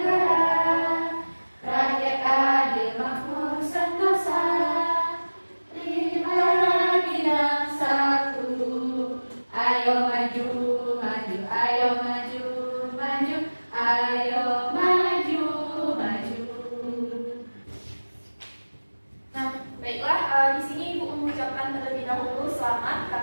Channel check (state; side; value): inverted; both; correlation -1.00